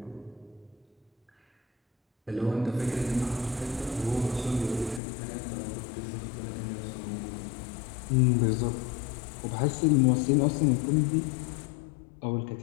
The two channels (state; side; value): drops out; right; at 5.0 s